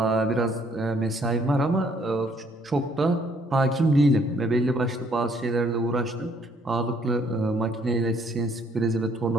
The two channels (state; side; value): normal; both; correlation 0.65